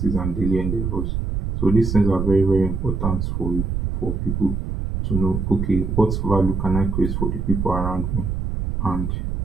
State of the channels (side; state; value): right; noise; rumble, 2 dB below the sound